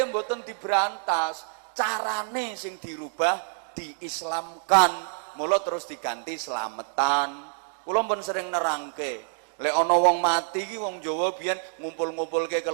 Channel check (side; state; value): left; silent; digital silence